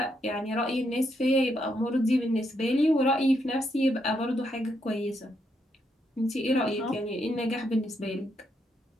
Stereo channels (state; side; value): normal; both; correlation 0.78